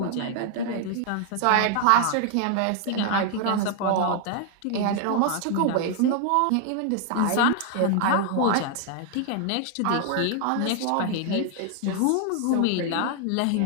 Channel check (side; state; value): both; different; correlation 0.00